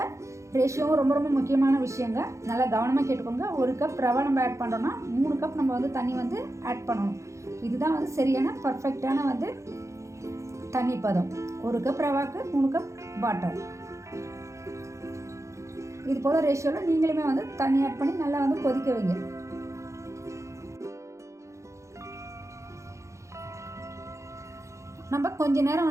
ரேஷியோவும் ரொம்ப ரொம்ப முக்கியமான விஷயங்க. நல்லா கவனமாக கேட்டுக்கோங்க. 1 கப் ரவை நம்ம ஆட் பண்ணுறோன்னா 3 கப் நம்ம வந்து தண்ணி வந்து ஆட் பண்ணணும். இதுதான் வந்து சரியான பர்ஃபெக்டான வந்து தண்ணி பதம். 1 கப் ரவாக்கு 3 கப் வாட்டர். இது போல் ரேஷியோவில் நீங்களுமே வந்து தண்ணி ஆட் பண்ணி நல்லா வந்து கொதிக்க வைங்க. நம்ம கொஞ்ச நேரம்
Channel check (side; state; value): left; late; 0.14 ms